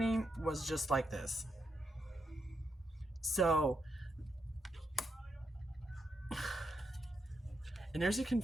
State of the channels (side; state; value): both; normal; correlation 0.82